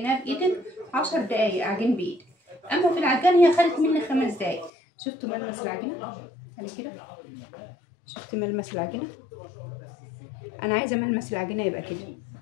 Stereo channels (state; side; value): drops out; right; at 4.7 s